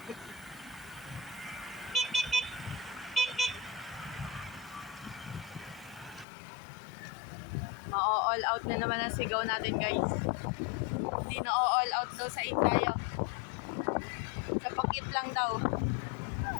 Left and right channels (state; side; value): drops out; right; at 6.2 s